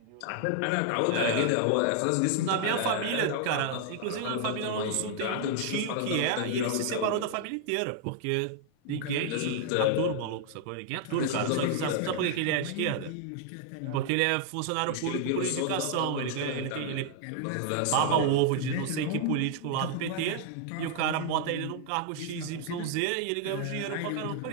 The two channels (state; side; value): different; both; correlation 0.00